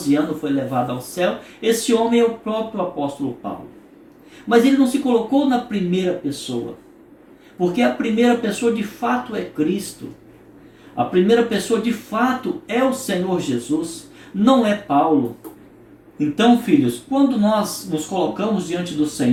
anos foi levado ao céu, esse homem é o próprio apóstolo Paulo. Mas ele não se colocou na primeira pessoa, porque a primeira pessoa de fato é Cristo. A primeira pessoa de fato é o Senhor Jesus, não é Paulo. Então, filhos, quando nós nos colocamos diante do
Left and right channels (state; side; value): identical; both; correlation 1.00